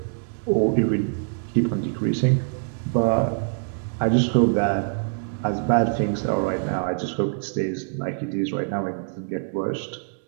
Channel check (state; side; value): silent; left; digital silence